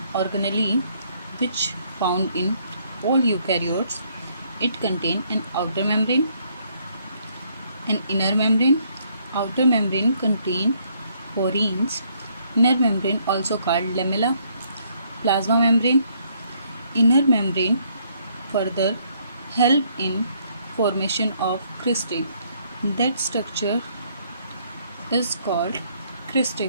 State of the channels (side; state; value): both; inverted; correlation -0.68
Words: organelle which found in all eukaryotes. It contains an outer membrane, an inner membrane. Outer membrane contains porins. Inner membrane also called lamella, plasma membrane. Inner membrane further help in formation of cristae. That structure is called